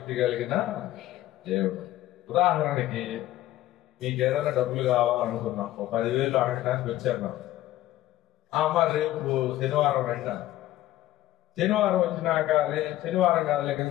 కలిగిన దేవుడు. ఉదాహరణకి మీకు ఏదైనా డబ్బులు కావాలనుకున్నాం, 10,000 అడగడానికి వచ్చారు. మరి రేపు శనివారం రండి. శనివారం వచ్చినాక శనివారం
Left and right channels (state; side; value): quieter; right; 14.7 dB